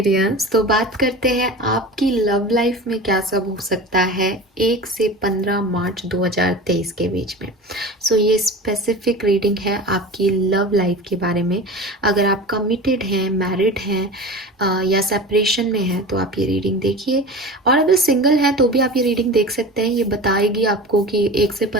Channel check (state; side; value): normal; both; correlation 0.33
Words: तो बात करते हैं आपकी लव लाइफ में क्या सब हो सकता है 1 से 15 मार्च 2023 के बीच में। ये स्पेसिफिक रीडिंग है आपकी लव लाइफ के बारे में। अगर आप कमिटेड हैं, मैरिड हैं या सेपरेशन में हैं तो आप ये रीडिंग देखिए। और अगर सिंगल हैं तो भी आप ये रीडिंग देख सकते हैं। ये बताएगी आपको कि 1 से